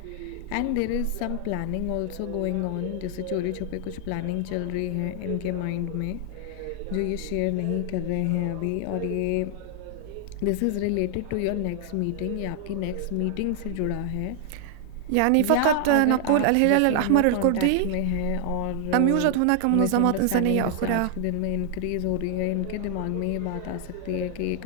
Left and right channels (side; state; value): both; different; correlation 0.00